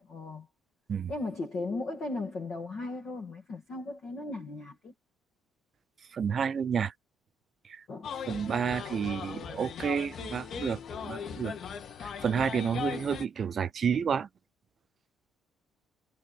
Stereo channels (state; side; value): quieter; left; 4.0 dB